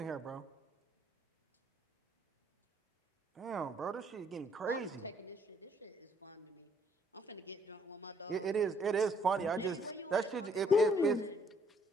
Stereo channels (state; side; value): normal; both; correlation 0.66